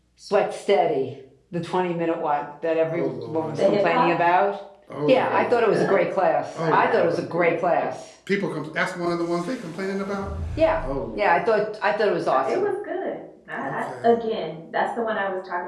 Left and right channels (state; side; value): identical; both; correlation 1.00